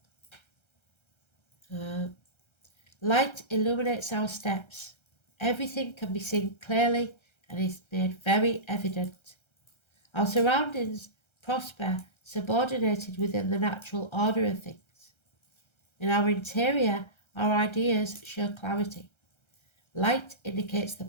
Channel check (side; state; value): right; late; 1.3 ms